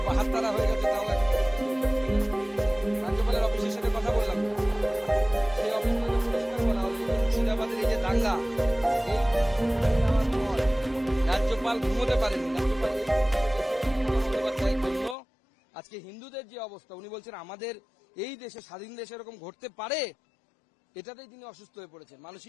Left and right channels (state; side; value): drops out; right; at 15.2 s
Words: বাহাত্তারা হয়ে গেছে। তাও রাজ্যপালের অফিসের সাথে কথা বললাম, সেই অফিস পরিষ্কার বলা হলো মুর্শিদাবাদের এই যে দাঙ্গা, রাজ্যপাল ঘুমোতে পারেনি। জন্য আজকে হিন্দুদের যে অবস্থা, উনি বলছেন আমাদের এই দেশে, স্বাধীন দেশে এরকম ঘটতে পারে, এটাতেই তিনি অসুস্থ হয়ে পড়েছেন,